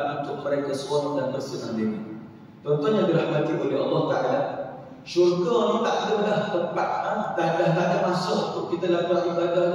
untuk mereka seronok dan bersenang diri. Tuan-tuan yang dirahmati oleh Allah Ta'ala, syurga ni tak ada dah tempat, tak ada masa untuk kita lakukan ibadah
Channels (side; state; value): both; identical; correlation 1.00